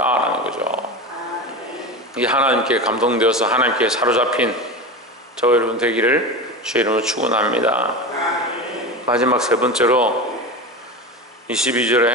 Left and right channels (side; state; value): both; normal; correlation 0.25